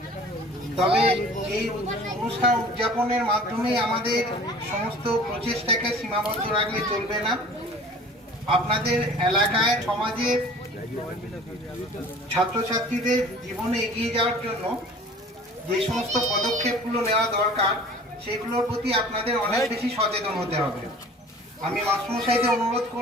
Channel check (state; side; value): normal; both; correlation 0.46